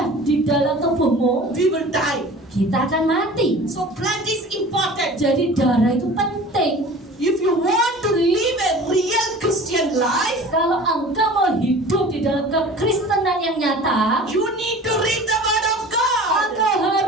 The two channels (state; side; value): normal; both; correlation 0.41